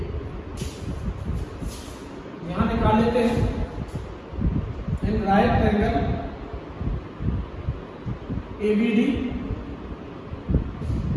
यहां निकाल लेते हैं। In right angle ABD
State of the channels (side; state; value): both; identical; correlation 1.00